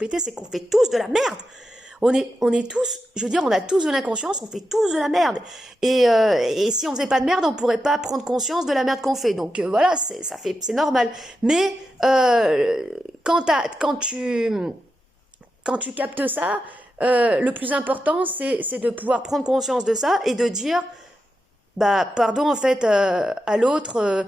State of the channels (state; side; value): normal; both; correlation 0.88